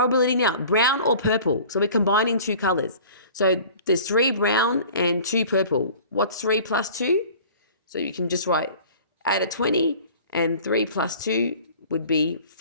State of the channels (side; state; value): both; inverted; correlation -0.45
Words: now, brown or purple. So we're combining 2 colors. So there's 3 brown and 2 purple. What's 3 plus 2? So you can just write out of 20, and 3 plus 2 would be